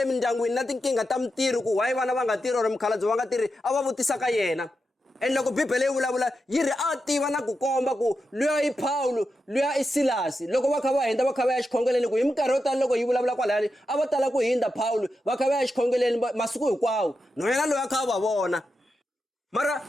mindyangwini na tinkingha ta mintirho ku why vana va nga tirhi or mukhalabye va nga tirhi a va vutisaka yena. And loko Bibele yi vulavula yi ri a tiva na ku komba ku luya i Paulo luya i Silasi loko va kha va hindza va kha va ya xikhongeleni ku hi minkarhi yo tala loko yi vulavula kwalani a va tala ku hindza Paulo va kha va ya xikhongeleni masiku hinkwawo no yena loyi a kha va vona. Mara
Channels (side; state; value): both; normal; correlation 0.88